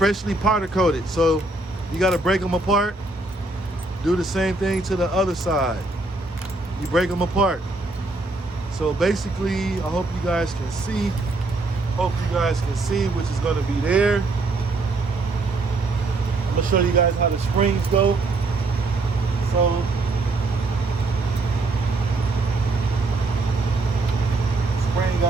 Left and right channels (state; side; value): quieter; left; 3.1 dB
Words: powder coated, so you gotta break them apart. Do the same thing to the other side. You break them apart. So basically, I hope you guys can see. Hope you guys can see, which is gonna be there. I'm gonna show you guys how the springs go. So, spring